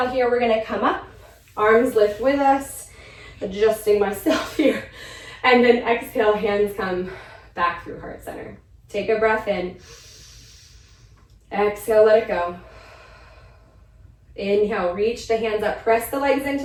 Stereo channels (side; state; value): both; identical; correlation 1.00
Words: here, we're going to come up. Arms lift with us, adjusting myself here. And then exhale, hands come back through heart center. Take a breath in. Exhale, let it go. Inhale, reach the hands up, press the legs into